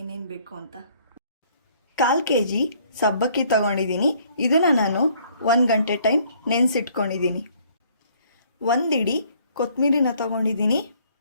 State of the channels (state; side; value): inverted; both; correlation -0.61